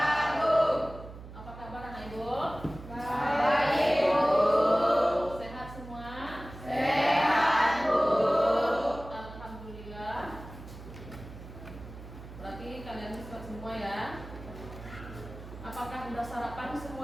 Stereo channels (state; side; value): noise; right; hum, 14 dB below the sound